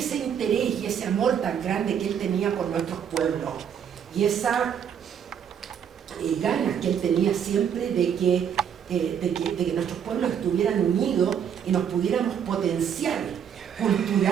interés y ese amor tan grande que él tenía por nuestros pueblos, y esa ganas que él tenía siempre de que nuestros pueblos estuvieran unidos y nos pudiéramos potenciar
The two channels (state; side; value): quieter; left; 8.3 dB